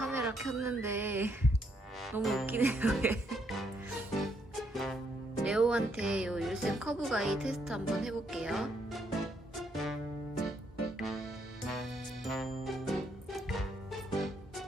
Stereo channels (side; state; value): both; normal; correlation 0.74